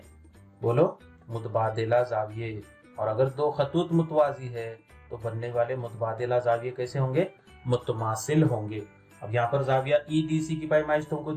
बोलो, मुतबादिला जाविये। और अगर दो खतूत मुतवाजी है तो बनने वाले मुतबादिला जाविये कैसे होंगे, मुतमासिल होंगे। अब यहाँ पर जाविया ई डी सी की पैमाइश तुमको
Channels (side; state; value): both; identical; correlation 1.00